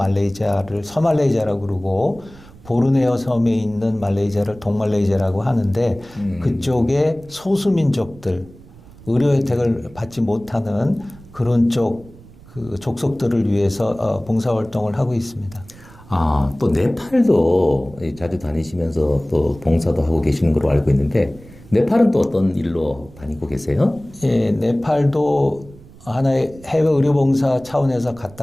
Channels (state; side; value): noise; right; rumble, 22 dB below the sound